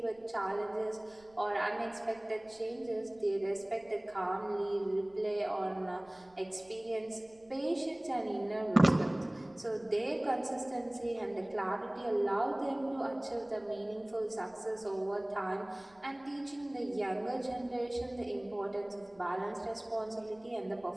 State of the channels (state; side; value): noise; right; rumble, 29 dB below the sound